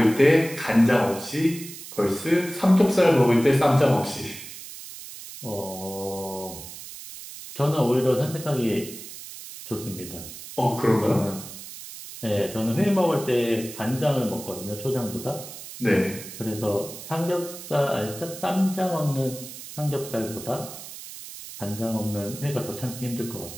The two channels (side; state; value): right; noise; hiss, 13 dB below the sound